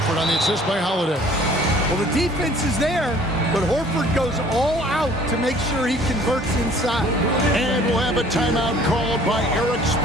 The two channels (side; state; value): both; normal; correlation 0.54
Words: on the assist by Holiday. Well, the defense is there, but Horford goes all out to make sure he converts inside. And we'll have a timeout called by Eric